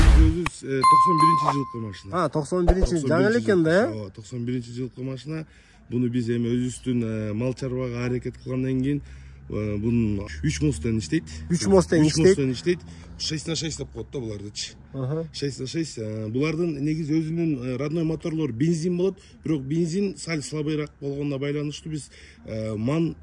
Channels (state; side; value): identical; both; correlation 1.00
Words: Өзү 91-жылкы машина. 91 жаңы эле экен да, 91-жылкы машина. Буну биз эми өзүбүздүн мал чарбага аракет кылгандан кийин бунун 3 мостен иштейт. 3 мостен иштейт. 6х6 деп коет да булардычы. 6х6. Булардын негизи өзүнүн родной моторлору бензин болот, бирок бензин сал слабыйраак болгонуна байланыштуу биз ман